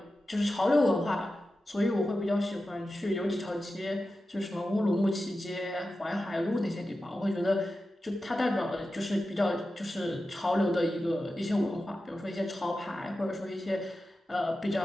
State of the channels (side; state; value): both; normal; correlation 0.92